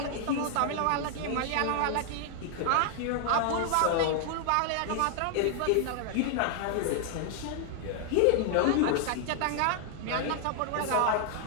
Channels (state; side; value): different; both; correlation 0.00